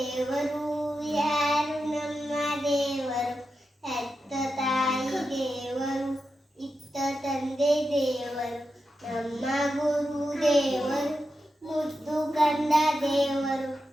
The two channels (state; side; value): normal; both; correlation 0.89